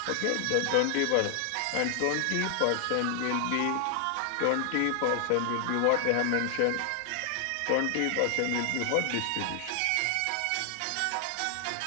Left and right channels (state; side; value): different; both; correlation 0.00